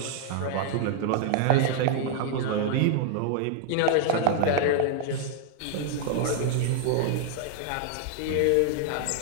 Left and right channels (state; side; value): different; both; correlation 0.00